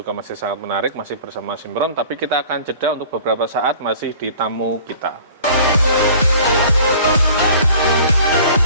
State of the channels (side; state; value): both; inverted; correlation -0.47